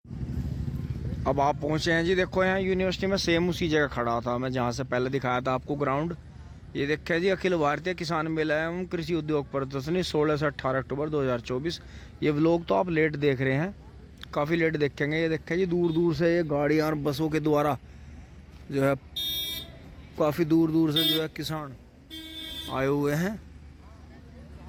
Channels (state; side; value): identical; both; correlation 1.00